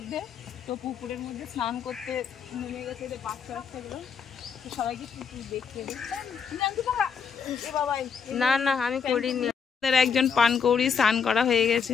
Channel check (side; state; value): right; quieter; 6.4 dB